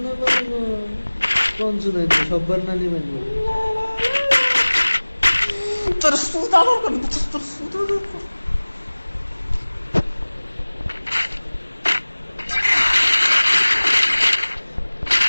কোন শুনে সববার না নিবেন তোর সুদা দরকার তোর সুদা দরকার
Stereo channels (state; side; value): inverted; both; correlation -1.00